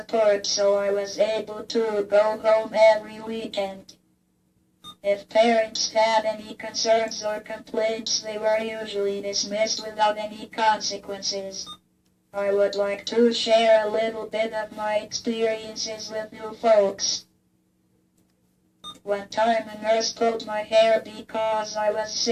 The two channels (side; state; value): both; identical; correlation 1.00